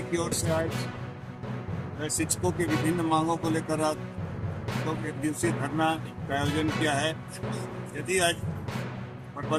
की ओर से आज शिक्षकों की विभिन्न मांगों को लेकर आज लोग एक दिवसीय धरना का आयोजन किया है। यदि आज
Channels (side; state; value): both; identical; correlation 1.00